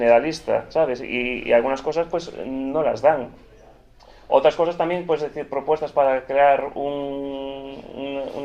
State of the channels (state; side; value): identical; both; correlation 1.00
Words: ¿sabes? Y algunas cosas pues no las dan. Otras cosas también, pues decir, propuestas para crear